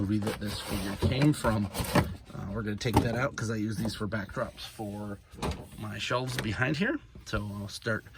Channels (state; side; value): identical; both; correlation 1.00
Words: that this figure came from. We're going to take that out because I use these for backdrops for my shelves behind here. So I'll start